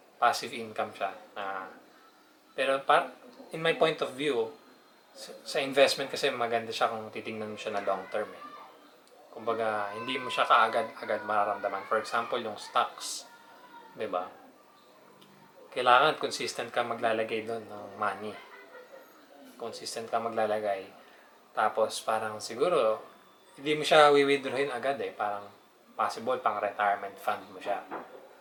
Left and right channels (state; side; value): identical; both; correlation 1.00